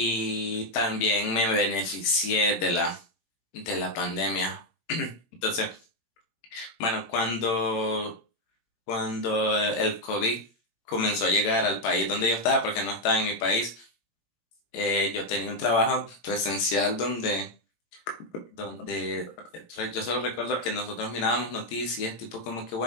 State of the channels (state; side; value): late; right; 18 ms